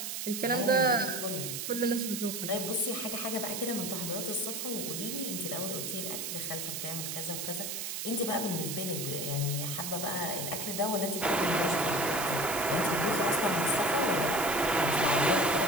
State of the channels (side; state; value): right; noise; hiss, 4 dB below the sound